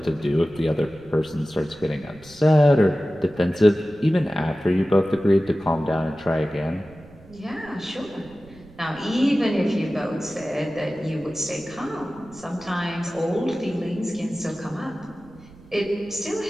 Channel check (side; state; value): right; noise; rumble, 22 dB below the sound